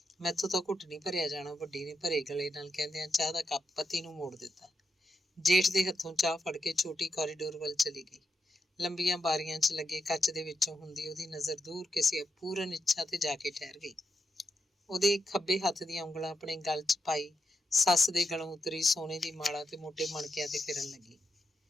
ਮੈਥੋਂ ਤਾਂ ਘੁੱਟ ਨਹੀਂ ਭਰਿਆ ਜਾਣਾ, ਵੱਡੀ ਨੇ ਭਰੇ ਗਲੇ ਨਾਲ ਕਹਿੰਦਿਆਂ ਚਾਹ ਦਾ ਕੱਪ ਪਤੀ ਨੂੰ ਮੋੜ ਦਿੱਤਾ। ਜੇਠ ਦੇ ਹੱਥੋਂ ਚਾਹ ਫੜ ਕੇ ਛੋਟੀ ਕੋਰੀਡੋਰ ਵੱਲ ਚਲੀ ਗਈ। ਲੰਬੀਆਂ ਬਾਰੀਆਂ 'ਚ ਲੱਗੇ ਕੱਚ ਦੇ ਵਿੱਚੋਂ ਹੁੰਦੀ ਉਹਦੀ ਨਜ਼ਰ ਦੂਰ ਕਿਸੇ ਅਪੂਰਨ ਇੱਛਾ ਤੇ ਜਾ ਕੇ ਠਹਿਰ ਗਈ। ਉਹਦੇ ਖੱਬੇ ਹੱਥ ਦੀਆਂ ਉਂਗਲਾਂ ਆਪਣੇ ਗਲ 'ਚ ਪਾਈ ਸੱਸ ਦੇ ਗਲੋਂ ਉਤਰੀ ਸੋਨੇ ਦੀ ਮਾਲਾ ਤੇ ਮੋਟੇ ਮਣਕਿਆਂ ਤੇ ਫਿਰਨ ਲੱਗੀ।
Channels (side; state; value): both; normal; correlation 0.85